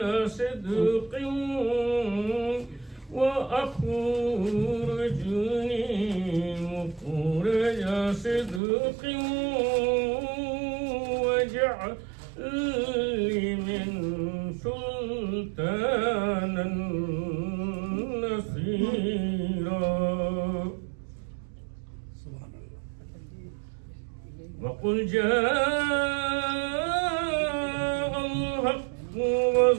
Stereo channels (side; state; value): left; drops out; at 8.6 s